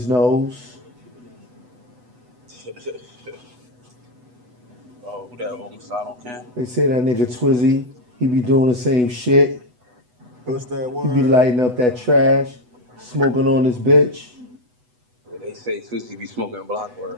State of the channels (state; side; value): late; left; 8.1 ms